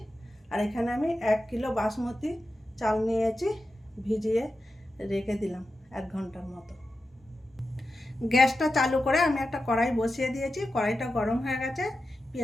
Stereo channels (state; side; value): normal; both; correlation 0.91